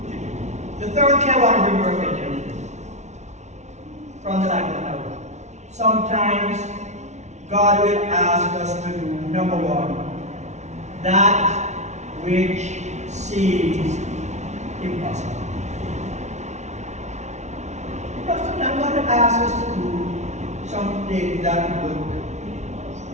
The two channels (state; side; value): late; left; 0.33 ms